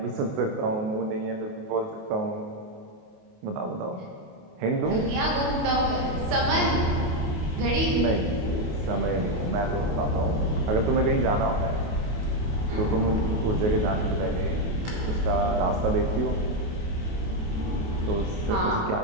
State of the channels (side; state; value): left; late; 28 ms